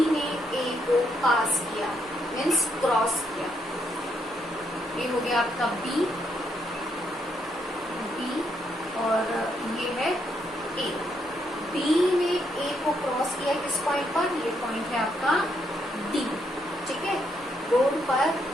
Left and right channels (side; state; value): both; normal; correlation 0.76